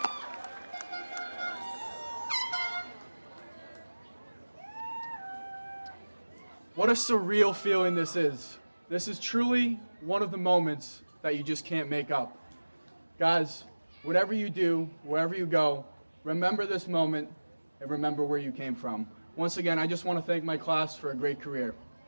What a surreal feeling this is. This is truly one of the moments that you just can't make up. Guys, whatever you do, wherever you go, remember this moment and remember where you came from. Once again, I just want to thank my class for a great career.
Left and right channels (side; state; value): both; inverted; correlation -1.00